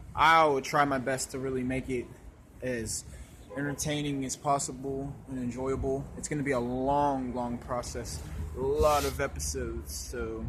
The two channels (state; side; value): identical; both; correlation 1.00